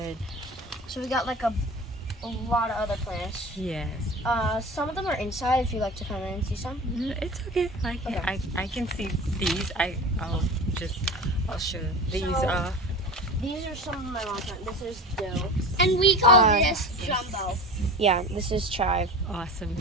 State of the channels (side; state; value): both; normal; correlation 0.33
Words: So we got like a lot of other plants. Yes. Some of them are inside. If you like to come in and see some. It's okay. Okay. I can see these. I'll show these So- off. These are some of my mom's plants. This is dill. And we call Uh, this jumbo. Yeah, this is chive. Awesome.